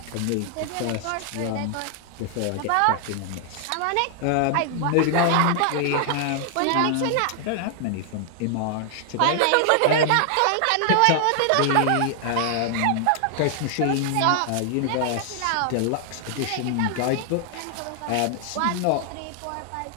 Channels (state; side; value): different; both; correlation 0.00